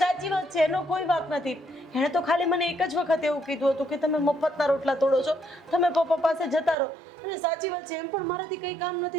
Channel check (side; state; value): left; drops out; at 6.8 s